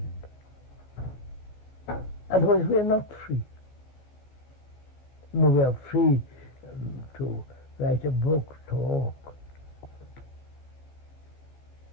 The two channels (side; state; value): right; late; 16 ms